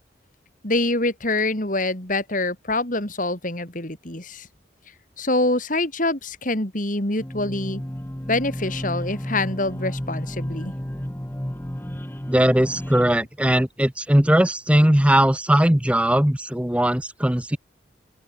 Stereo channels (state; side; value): normal; both; correlation 0.72